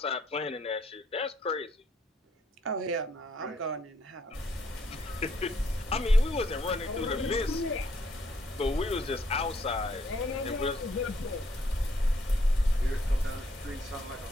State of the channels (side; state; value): both; normal; correlation 0.70